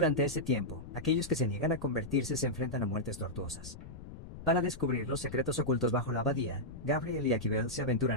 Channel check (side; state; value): left; noise; rumble, 13 dB below the sound